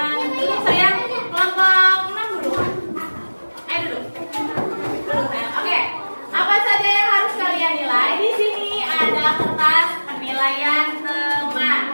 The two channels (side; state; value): both; inverted; correlation -1.00